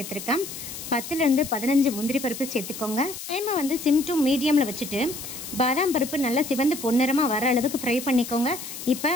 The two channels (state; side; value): noise; left; hiss, 10 dB below the sound